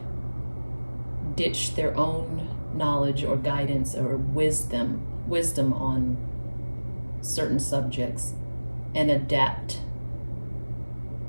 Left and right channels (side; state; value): both; inverted; correlation -1.00